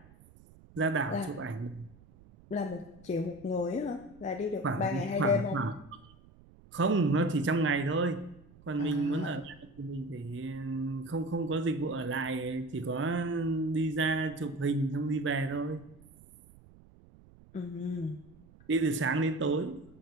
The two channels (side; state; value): right; noise; rumble, 24 dB below the sound